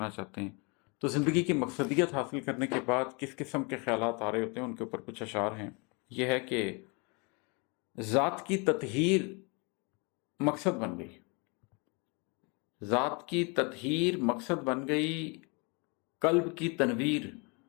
چاہتے ہیں۔ تو زندگی کی مقصدیت حاصل کرنے کے بعد کس قسم کے خیالات آ رہے ہوتے ہیں، ان کے اوپر کچھ اشعار ہیں۔ یہ ہے کہ ذات کی تطہیر مقصد بن گئی، ذات کی تطہیر مقصد بن گئی، قلب کی تنویر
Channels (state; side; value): quieter; right; 31.4 dB